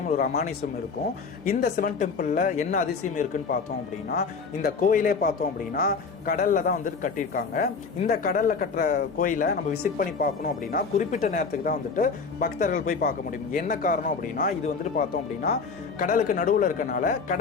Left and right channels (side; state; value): right; quieter; 5.0 dB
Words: ஒரு அமானுஷம் இருக்கும். இந்த சிவன் டெம்பிளில் என்ன அதிசயம் இருக்குன்னு பார்த்தோம் அப்படின்னா, இந்த கோயிலே பார்த்தோம் அப்படின்னா கடலில் தான் வந்துட்டு கட்டியிருக்காங்க. இந்த கடலில் கட்டுற கோயிலை நம்ம விசிட் பண்ணி பார்க்கணும் அப்படின்னா குறிப்பிட்ட நேரத்துக்கு தான் வந்துட்டு பக்தர்கள் போய் பார்க்க முடியும். என்ன காரணம் அப்படின்னா, இது வந்துட்டு பார்த்தோம் அப்படின்னா கடலுக்கு நடுவில் இருக்கனால